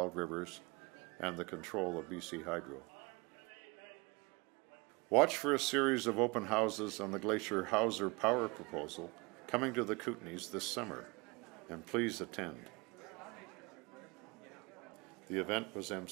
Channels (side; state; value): left; quieter; 26.9 dB